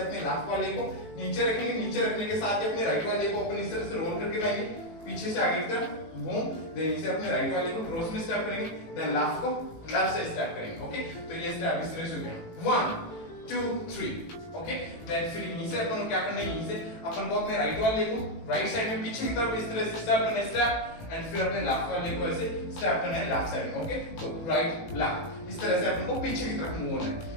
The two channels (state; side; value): late; right; 18 ms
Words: अपने लेफ्ट वाले को नीचे रखेंगे, नीचे रखने के साथ ही अपने राइट वाले को अपन इस तरह से रोल करके लाएंगे पीछे से आगे की तरफ, बूम, देन इसे अपने राइट वाले को क्रॉस में स्टेप करेंगे, देन लेफ्ट को लेफ्ट से स्टेप करेंगे। ओके, तो ये स्टेप इस तरह से हो गया 1 2 3। ओके, देन फिर यहीं से अपन को क्या करना है, यहीं से अपन को अपने राइट वाले को राइट साइड में पीछे की तरफ इस तरह से स्टेप करना है स्टेप, एंड फिर अपने लेफ्ट वाले को ऐसे स्टेप करना है लेफ्ट साइड में। ओके, तो राइट लेफ्ट इस तरह से अपन को पीछे की तरफ मूव होना है।